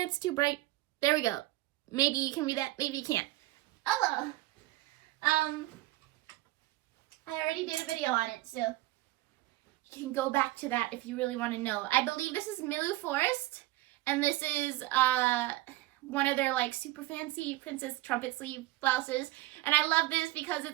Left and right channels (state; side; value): quieter; left; 18.0 dB